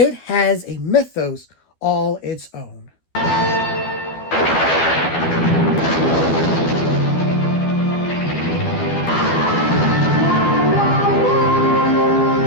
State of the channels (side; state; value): right; late; 12 ms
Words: has a mythos all its own.